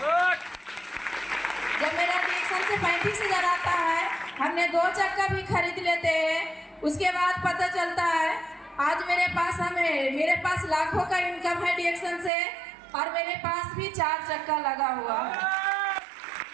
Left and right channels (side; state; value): left; drops out; at 12.3 s